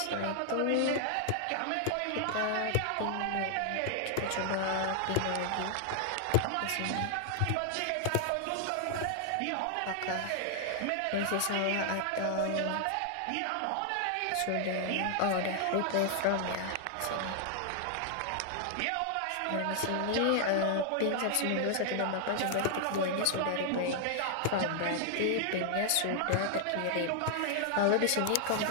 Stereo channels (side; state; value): both; different; correlation 0.00